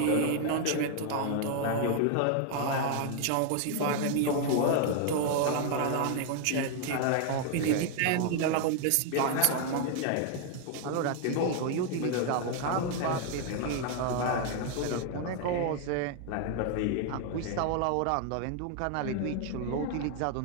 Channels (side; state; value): both; different; correlation 0.00